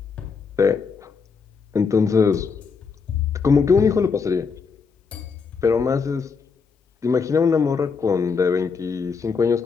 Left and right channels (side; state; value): right; quieter; 5.4 dB